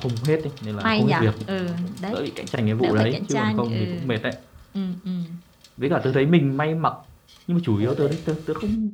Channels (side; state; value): both; identical; correlation 1.00